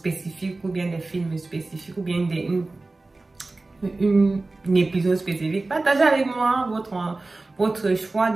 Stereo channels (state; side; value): quieter; left; 3.3 dB